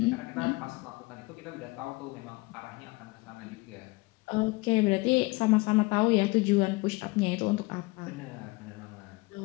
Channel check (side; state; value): right; quieter; 24.1 dB